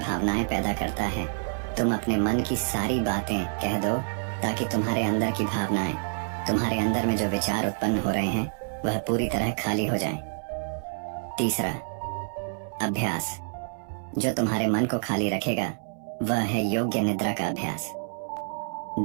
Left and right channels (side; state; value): left; silent; 60 dB below the other